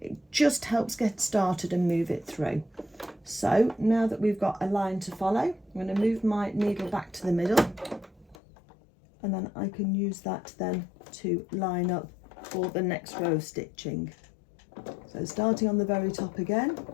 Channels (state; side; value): drops out; right; at 8.3 s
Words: it just helps get started and move it through. So now that we've got a line to follow, I'm going to move my needle back to the middle, and then I can use that then to line up for the next row of stitching. So starting on the very top again,